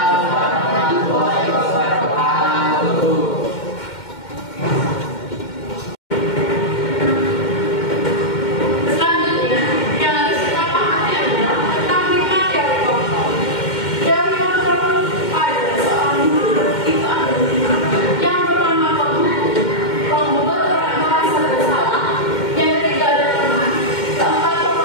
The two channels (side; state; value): right; late; 2.1 ms